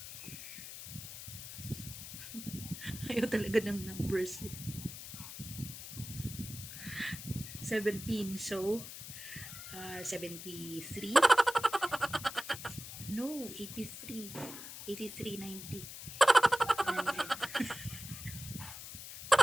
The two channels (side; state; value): left; noise; hiss, 10 dB below the sound